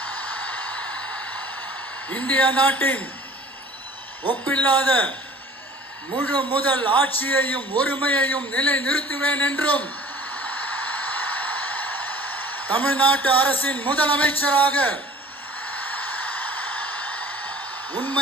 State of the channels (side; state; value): both; normal; correlation 0.47